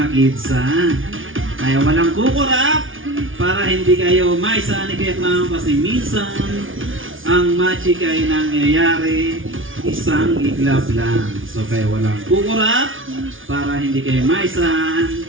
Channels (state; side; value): late; left; 0.57 ms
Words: kids ha. Kaya walang kukurap para hindi kayo maisa ni Kuya Clown kasi minsan ang magic ay nangyayari isang iglap lang. So kaya walang kukurap para hindi kayo maisa